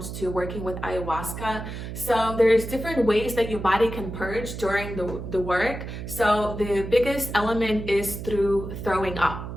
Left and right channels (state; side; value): noise; right; hum, 8 dB below the sound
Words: to working with ayahuasca. So there's different ways that your body can purge during the work. So the biggest element is through throwing up.